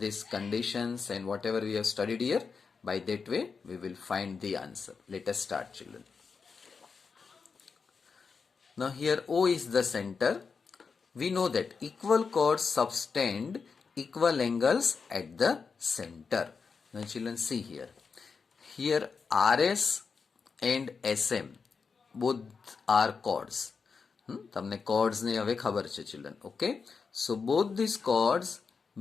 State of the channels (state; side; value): quieter; right; 5.3 dB